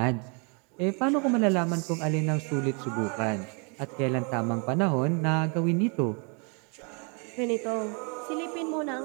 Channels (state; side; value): quieter; left; 35.3 dB